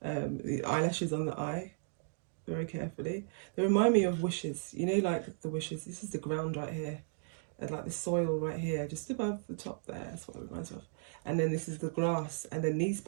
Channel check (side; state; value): left; silent; digital silence